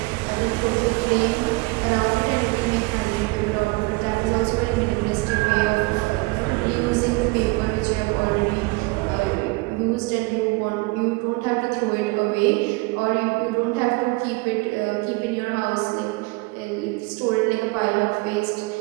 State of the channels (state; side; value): quieter; left; 26.0 dB